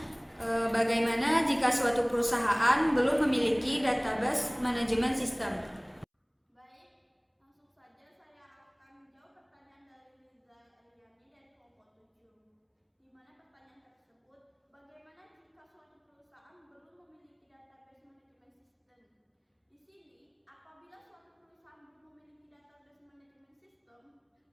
bagaimana jika suatu perusahaan belum memiliki database manajemen sistem? Baik, langsung saja saya akan menjawab pertanyaan dari Riza Eliani dari kelompok 7. Di mana pertanyaan tersebut, bagaimana jika suatu perusahaan belum memiliki database manajemen sistem? Di sini, apabila suatu perusahaan belum memiliki database manajemen sistem,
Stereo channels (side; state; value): both; identical; correlation 1.00